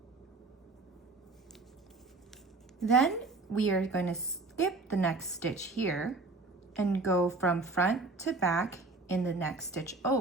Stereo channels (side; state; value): left; quieter; 3.4 dB